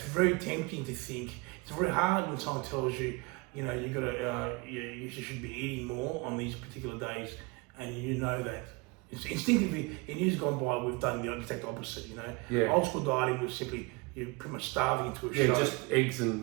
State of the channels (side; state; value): left; quieter; 27.0 dB